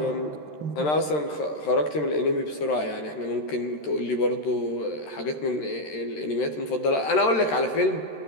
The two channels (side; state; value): right; late; 13 ms